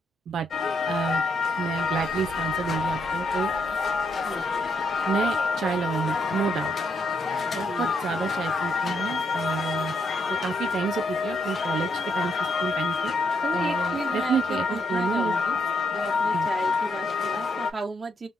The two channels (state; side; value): normal; both; correlation 0.76